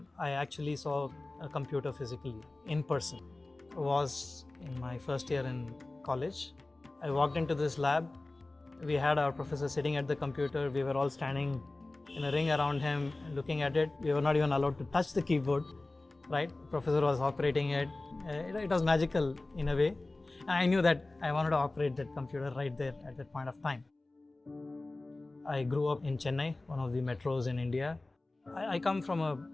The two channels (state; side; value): quieter; right; 3.0 dB